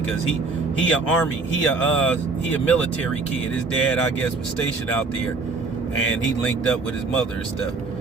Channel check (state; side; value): quieter; left; 4.0 dB